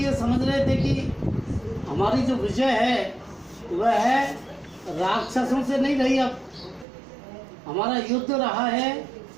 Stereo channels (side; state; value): left; drops out; at 6.9 s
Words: समझ रहे थे कि हमारी जो विजय है वह है राक्षसों से नहीं रही, अब हमारा युद्ध रहा है